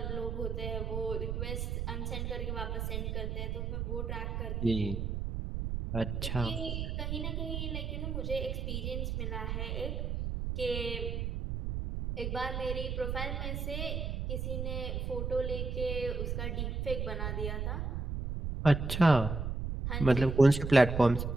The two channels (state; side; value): noise; right; rumble, 2 dB below the sound